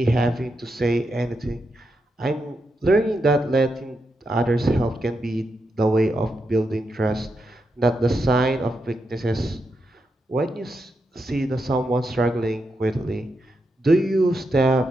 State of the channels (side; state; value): both; normal; correlation 0.85